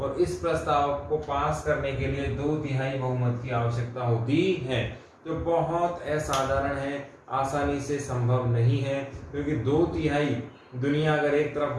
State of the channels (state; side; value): identical; both; correlation 1.00